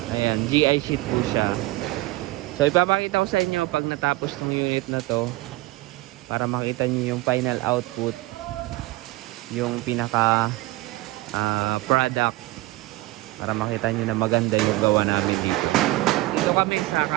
Ayan, GI sheet po siya. So ipapakita ko sa inyo pag natapos ng unit na to, para makita niyo yung final output, yung pinaka product, para makita niyo na maganda yung gawa namin dito. Dito kami sa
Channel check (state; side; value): quieter; left; 19.6 dB